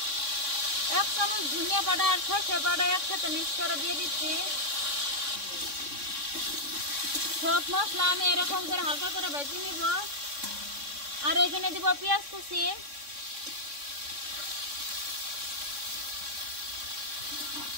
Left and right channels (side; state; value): left; late; 3.6 ms